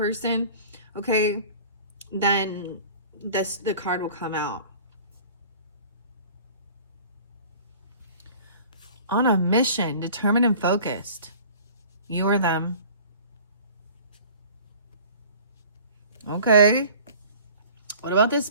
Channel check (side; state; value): both; inverted; correlation -0.45